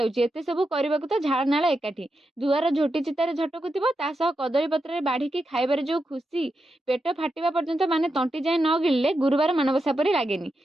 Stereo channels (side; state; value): both; normal; correlation 0.87